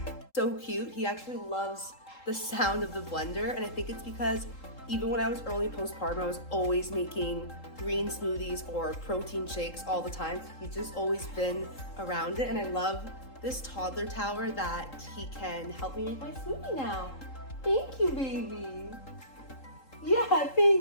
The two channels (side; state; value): right; late; 3.7 ms